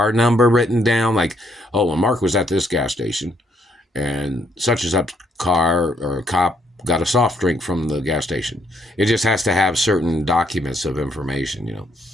number written down. Like, oh, well, Mark was at this gas station and such and such car or cop got a soft drink from the gas station. It just has to have certain documents of information,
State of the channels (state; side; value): normal; both; correlation 0.71